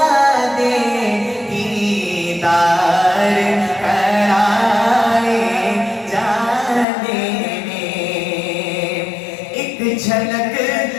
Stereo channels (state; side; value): drops out; right; at 6.9 s